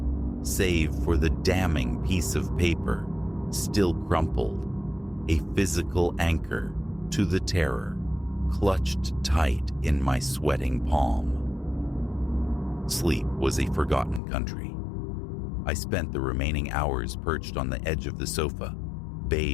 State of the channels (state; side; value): drops out; right; at 14.2 s